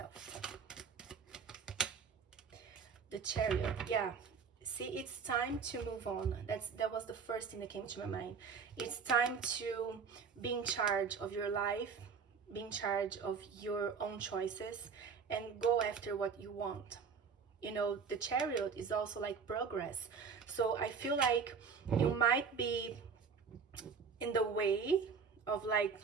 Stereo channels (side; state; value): left; quieter; 5.9 dB